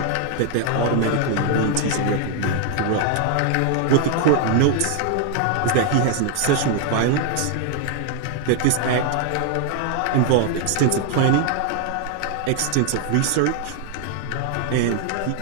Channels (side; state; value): both; different; correlation 0.00